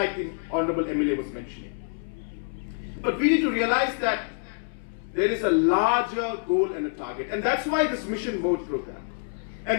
the Honorable MLA was mentioning. But we need to realize that there is a larger goal and a target. And that's why this mission mode program.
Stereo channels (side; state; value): right; silent; 60 dB below the other